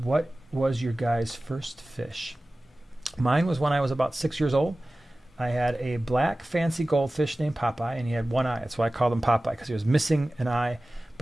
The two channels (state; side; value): normal; both; correlation 0.97